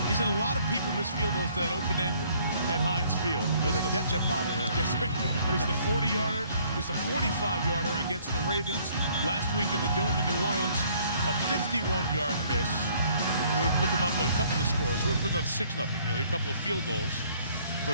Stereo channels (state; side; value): inverted; both; correlation -0.61